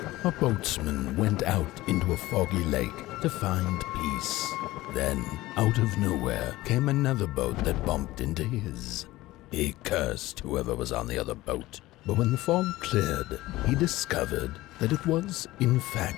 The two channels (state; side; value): quieter; right; 17.8 dB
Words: A boatsman went out into a foggy lake to find peace. Then, out of nowhere, came another boat that bumped into his. He cursed whoever was on the other boat, but when the fog cleared, he discovered that it was, in fact,